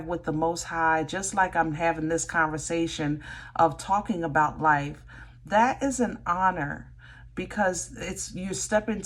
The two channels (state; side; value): identical; both; correlation 1.00